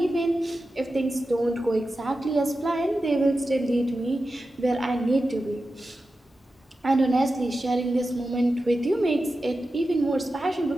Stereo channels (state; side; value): normal; both; correlation 0.92